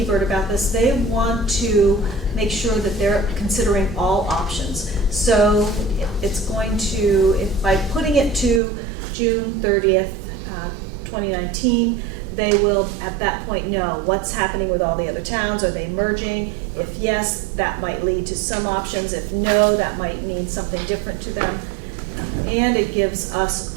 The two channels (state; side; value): drops out; left; at 8.6 s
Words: about this, they want to make sure that they're considering all options. So it's going to, by putting it to June 30th, 2019, they will at that point know what's happening with all the other towns. Are they merging? If yes, that might lead to some options. If no, that might mean something different to them. And it gives us